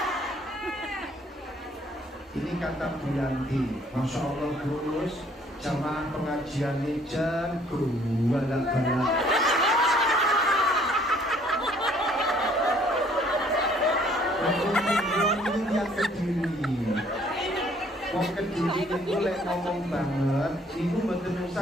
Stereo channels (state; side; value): normal; both; correlation 0.60